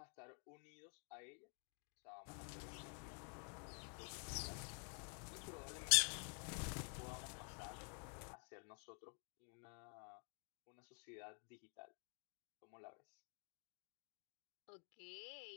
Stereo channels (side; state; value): right; quieter; 39.4 dB